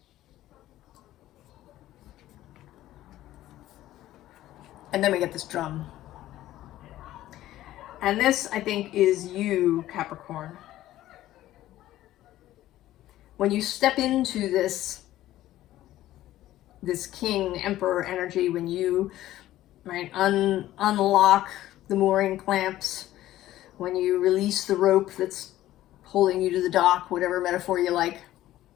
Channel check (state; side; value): quieter; right; 14.4 dB